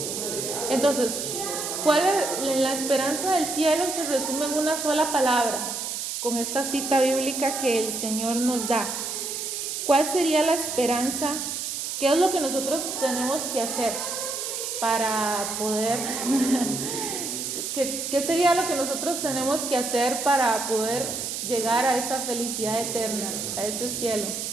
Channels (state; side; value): noise; right; hiss, 4 dB below the sound